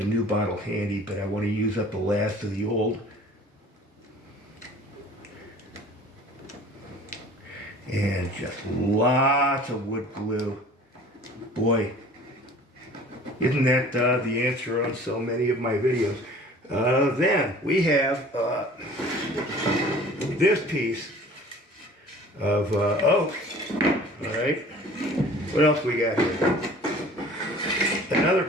new bottle handy, but I want to use up the last of the old. And just lots of wood glue. Boy, isn't that the answer on so many of my videos? Then we have this piece of oak. All right. What else we got here? Another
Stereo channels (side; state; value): both; normal; correlation 0.47